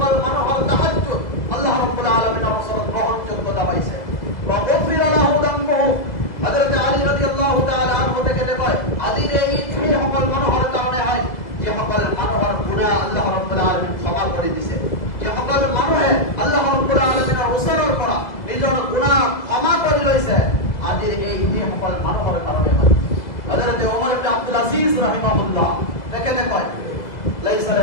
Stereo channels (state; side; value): late; right; 2.0 ms